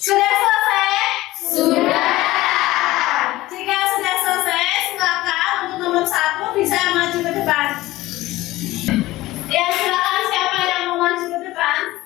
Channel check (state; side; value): quieter; right; 17.6 dB